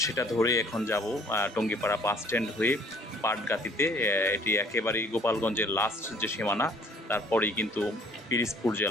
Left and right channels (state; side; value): normal; both; correlation 0.57